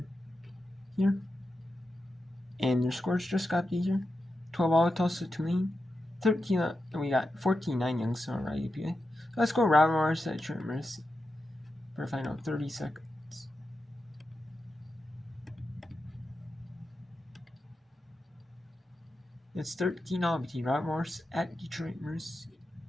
here. And your scores just got easier. 12 Tulsa Tulane. 13, we got 14-9 Youngstown IUPUI. So let's go Ravenmars at Trent Mercy for a final 30 seconds. It's 13-0 between Ravenmars at Detroit Mercy.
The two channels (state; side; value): normal; both; correlation 0.89